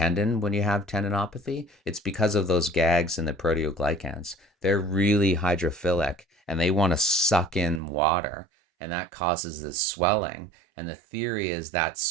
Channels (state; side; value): drops out; left; at 7.8 s